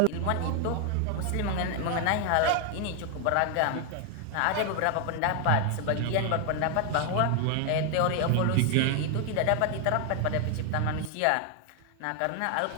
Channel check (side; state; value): both; different; correlation 0.01